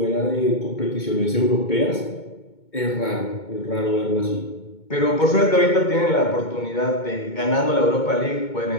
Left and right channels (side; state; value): right; late; 2.2 ms